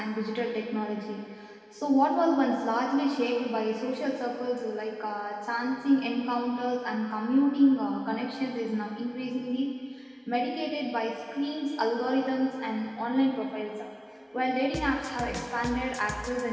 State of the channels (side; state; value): both; identical; correlation 1.00